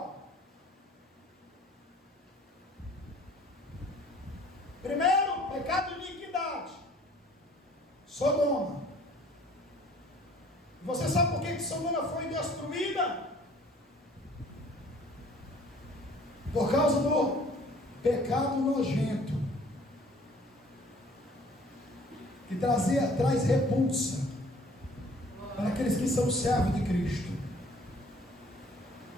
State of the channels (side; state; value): both; normal; correlation 0.54